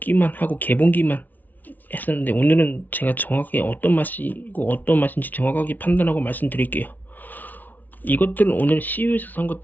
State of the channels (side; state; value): right; late; 0.081 ms